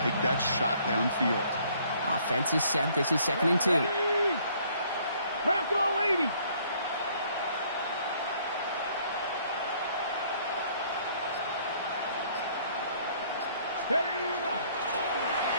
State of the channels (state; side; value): inverted; both; correlation -0.62